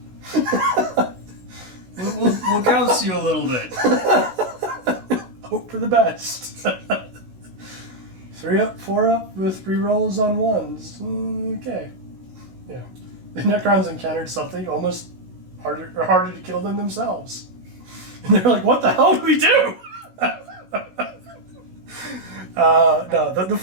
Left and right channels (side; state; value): left; late; 16 ms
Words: We'll gauss you a little bit. Hope for the best. 3 up, 4 up with rerolls on 1s. Okay. Yeah. The Necrons encountered something almost harder to kill than themselves. And they're like, what the hell do we do? No,